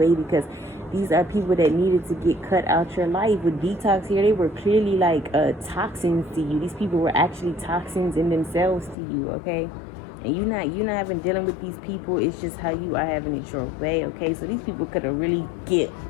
because these are people that needed to get cut out your life. With detox here, they were clearly like toxins to you. These people were actually toxins in themselves to you, okay? And you're not having dealing with these people. It's just how you are having it your way, okay? So these people could have really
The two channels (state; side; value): drops out; right; at 9.0 s